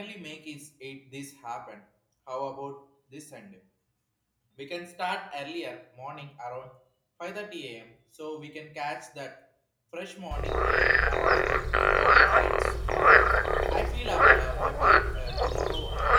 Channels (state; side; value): identical; both; correlation 1.00